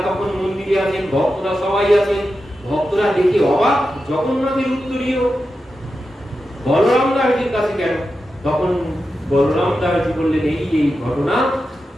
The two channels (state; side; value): normal; both; correlation 0.90